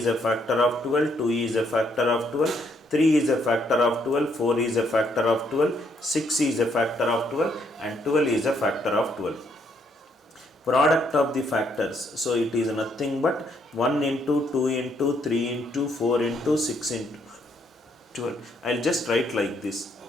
a factor of 12, 2 is a factor of 12, 3 is a factor of 12, 4 is a factor of 12, 6 is a factor of 12 and 12 is a factor of 12. Product of the factors. So it is nothing but 1 into 2 into 3 into 4 into 6 into 12. I'll just write like this.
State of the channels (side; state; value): both; normal; correlation 0.72